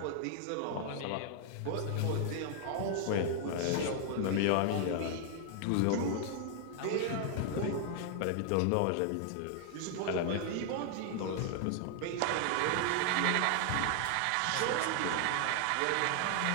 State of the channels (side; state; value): both; different; correlation 0.00